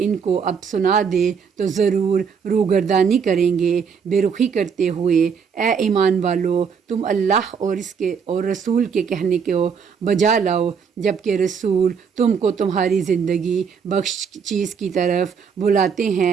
کو اب سنا دے تو ضرور روگردانی کریں گے۔ بے رخی کرتے ہوئے اے ایمان والو، تم اللہ اور اس کے اور رسول کے کہنے کو بجا لاؤ جبکہ رسول تم کو تمہاری زندگی بخش چیز کی طرف بلاتے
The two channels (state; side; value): quieter; left; 6.5 dB